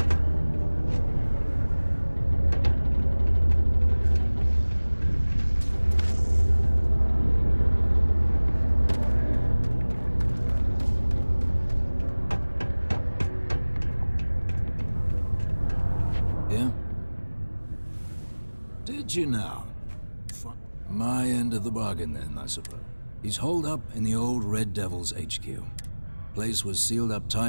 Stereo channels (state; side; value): inverted; both; correlation -1.00